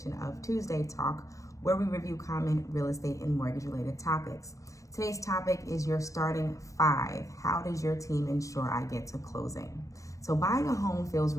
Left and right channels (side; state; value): right; late; 0.16 ms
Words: of Tuesday Talk, where we review common real estate and mortgage related topics. Today's topic is your starting five. How does your team ensure I get to closing? So buying a home feels